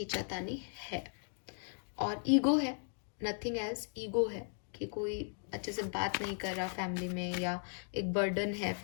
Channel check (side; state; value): right; silent; 53 dB below the other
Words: है और ईगो है, नथिंग एल्स। ईगो है कि कोई अच्छे से बात नहीं कर रहा फैमिली में, या एक बर्डन है